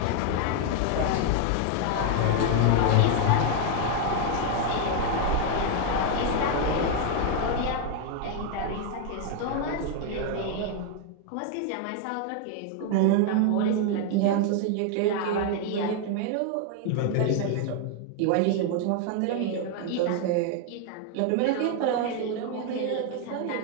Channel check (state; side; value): different; both; correlation 0.00